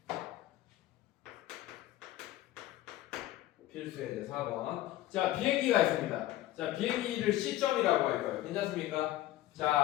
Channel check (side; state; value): right; quieter; 15.1 dB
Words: 필수의 이제 4번. 자, 비행기가 있습니다. 자, 비행기를 C점이라고 할 거예요. 괜찮습니까?